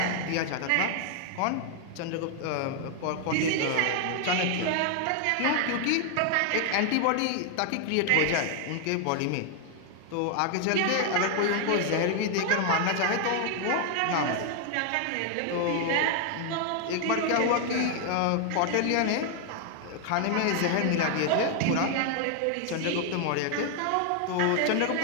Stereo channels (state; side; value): different; both; correlation 0.00